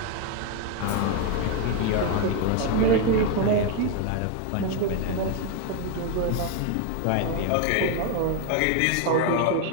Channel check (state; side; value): different; both; correlation 0.01